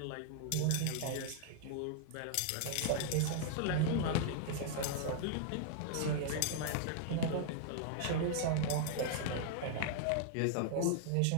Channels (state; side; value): different; both; correlation -0.01